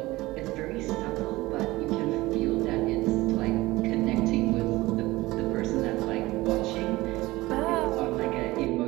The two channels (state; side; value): quieter; left; 19.5 dB